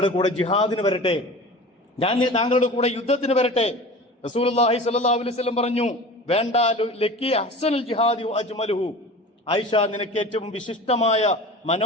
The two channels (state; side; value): normal; both; correlation 0.37